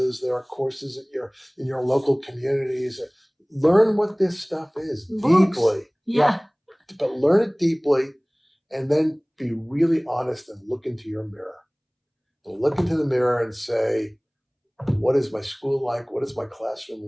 there are courses in your local communities. Learn what this stuff is deeply. Yeah. But learn it deeply and then be really honest and look into your mirror. And look into the mirror and say, what is my school like? What is my classroom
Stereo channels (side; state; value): both; identical; correlation 1.00